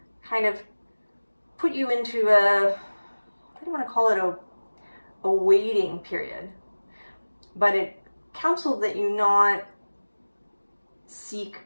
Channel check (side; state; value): both; inverted; correlation -1.00